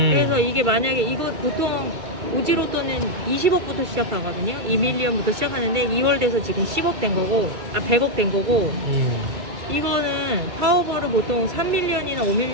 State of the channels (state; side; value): late; left; 2.4 ms